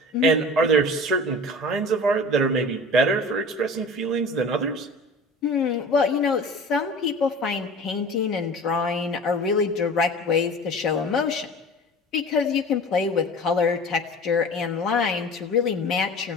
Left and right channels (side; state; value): both; normal; correlation 0.39